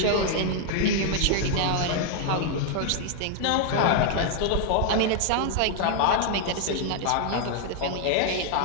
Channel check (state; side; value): different; both; correlation 0.00